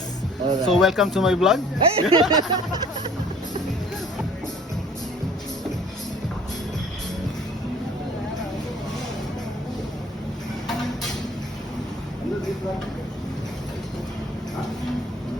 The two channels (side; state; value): both; normal; correlation 0.53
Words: Alright. So welcome to my vlog.